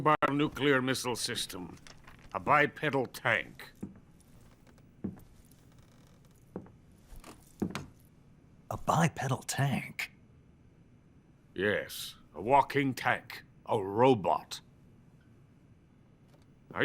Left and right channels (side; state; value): both; identical; correlation 1.00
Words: nuclear missile system. A bipedal tank. A bipedal tank? Yes, a walking tank. A robot. Are